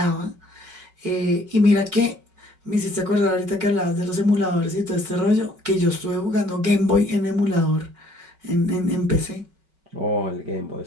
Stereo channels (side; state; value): left; late; 5.3 ms